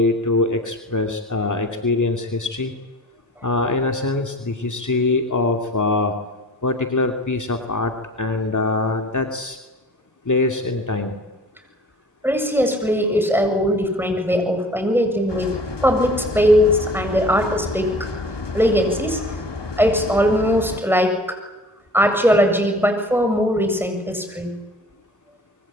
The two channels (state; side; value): normal; both; correlation 0.45